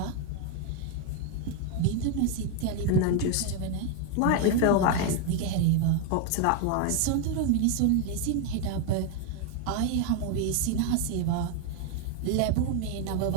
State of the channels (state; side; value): different; both; correlation 0.01